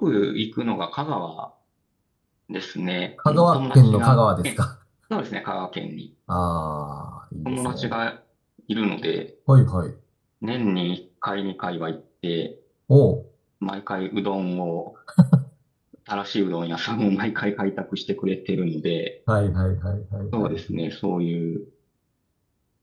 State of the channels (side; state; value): both; identical; correlation 1.00